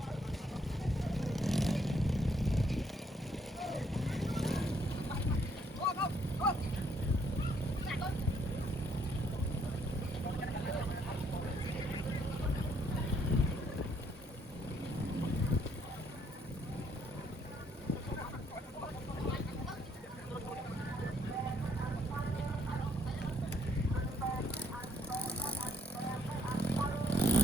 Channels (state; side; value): normal; both; correlation 0.69